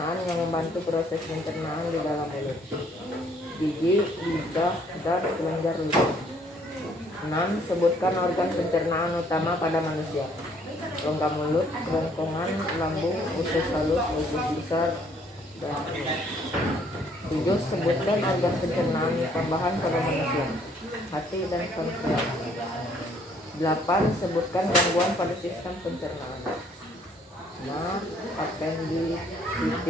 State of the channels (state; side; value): normal; both; correlation 0.64